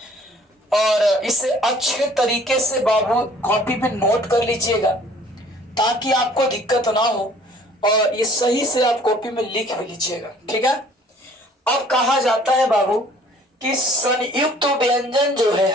और इसे अच्छे तरीके से बाबू कॉपी पे नोट कर लीजिएगा ताकि आपको दिक्कत ना हो और ये सही से आप कॉपी में लिख भी लीजिएगा, ठीक है। अब कहा जाता है बाबू कि संयुक्त व्यंजन जो है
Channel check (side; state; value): both; normal; correlation 0.55